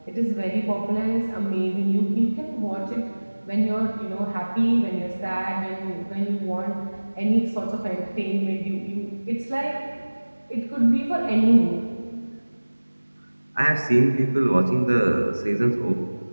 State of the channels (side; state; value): both; inverted; correlation -1.00